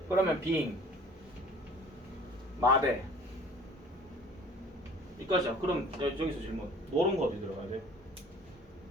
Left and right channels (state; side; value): normal; both; correlation 0.49